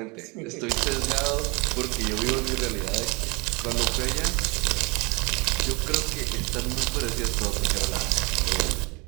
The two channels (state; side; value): quieter; left; 28.1 dB